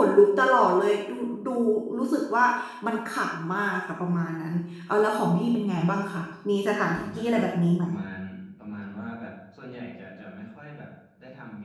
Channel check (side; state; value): both; identical; correlation 1.00